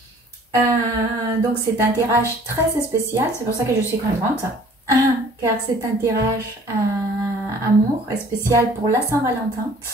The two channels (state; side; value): normal; both; correlation 0.53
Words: Donc c'est un tirage très spécial, c'est pour ça que je suis contente, car c'est un tirage amour spécial pour la Saint-Valentin.